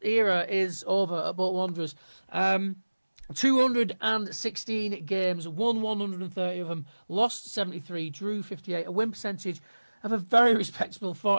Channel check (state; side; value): inverted; both; correlation -1.00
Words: era is over at Bolton Wanderers. 216 games, won 130 of them, lost 73, drew 58, a win percentage of a very respectable